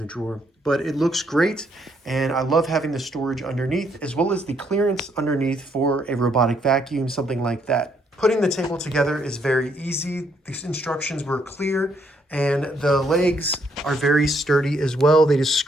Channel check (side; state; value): both; normal; correlation 0.71